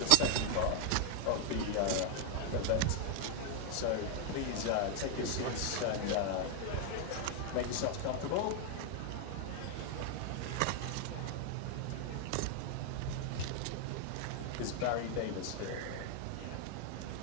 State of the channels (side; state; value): both; different; correlation 0.00